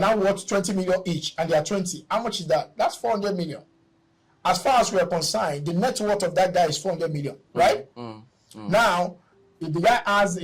worth 20 million each, and they are 20. How much is that? That's 400 million. As far as we are concerned, the net worth of that guy is 400 million, right? Now, if the guy has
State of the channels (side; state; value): both; identical; correlation 1.00